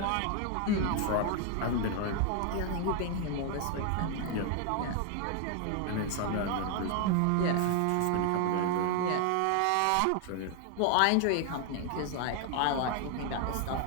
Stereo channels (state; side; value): different; both; correlation 0.00